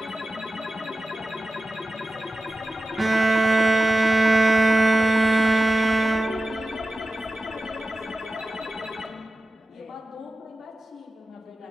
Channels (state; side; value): normal; both; correlation 0.94